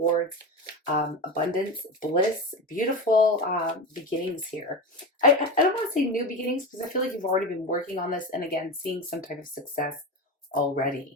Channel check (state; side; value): normal; both; correlation 0.23